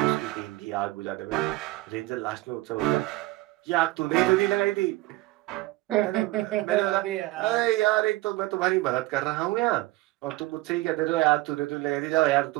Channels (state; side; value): quieter; left; 19.3 dB